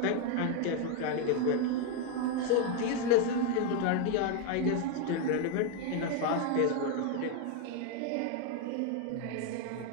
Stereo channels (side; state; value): both; different; correlation 0.01